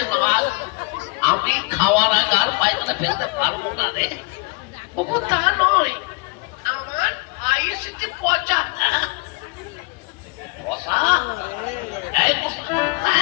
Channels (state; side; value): quieter; right; 27.2 dB